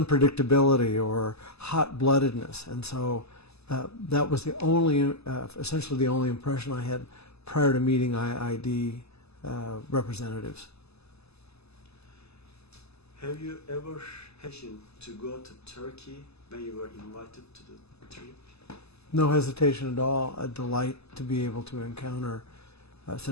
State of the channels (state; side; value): late; right; 0.79 ms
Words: or hot-bloodedness. And so that was the only, essentially the only impression I had prior to meeting IID representatives. Have you ever hesitated to go to Turkey when you were invited to the trip? No hesitation at all. A delight to be able to encounter